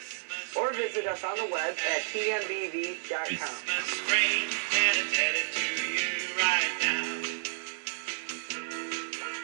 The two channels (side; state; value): left; silent; digital silence